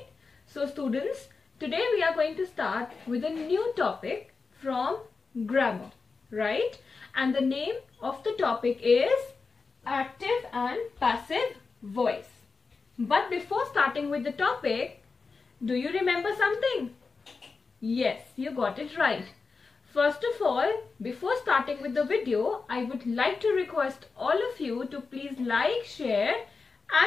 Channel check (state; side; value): quieter; right; 4.5 dB